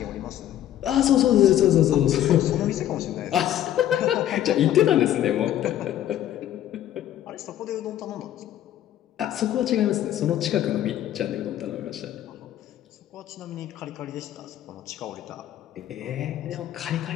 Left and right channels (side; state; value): right; quieter; 12.0 dB